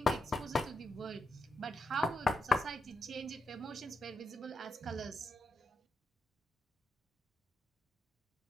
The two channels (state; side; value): normal; both; correlation 0.84